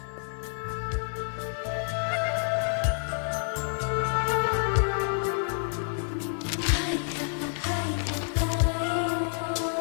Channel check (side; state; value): right; silent; 57 dB below the other